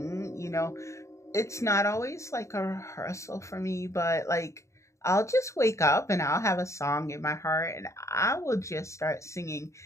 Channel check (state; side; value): late; right; 0.14 ms